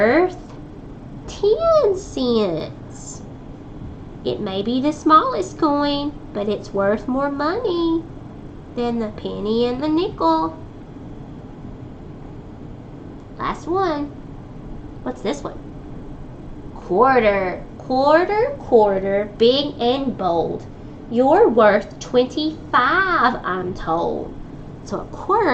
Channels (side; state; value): both; identical; correlation 1.00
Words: 10 cents. It may be the smallest coin, but it's worth more money than the penny and the nickel. Last one. What's this one? Quarter. Quarter, quarter, big and bold. You're worth 25, I'm told. So a